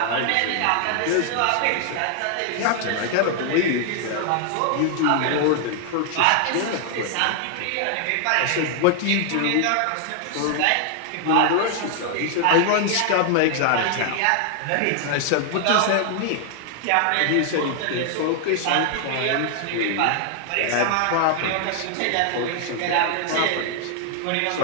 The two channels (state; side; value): different; both; correlation 0.00